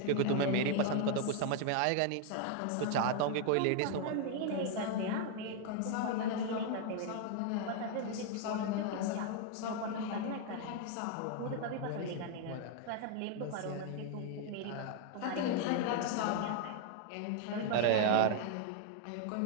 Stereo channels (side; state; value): both; different; correlation 0.00